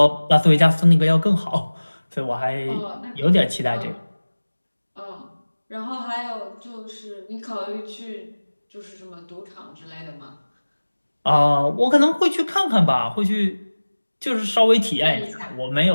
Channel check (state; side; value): inverted; both; correlation -1.00